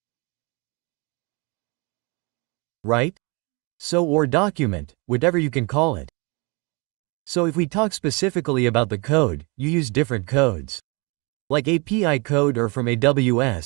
Right? So or document, whatever you can call it. So if we talk specifically about the code, you use different codes. Like API code or from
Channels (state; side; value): quieter; left; 29.9 dB